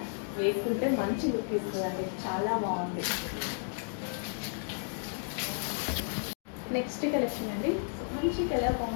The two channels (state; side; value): silent; right; digital silence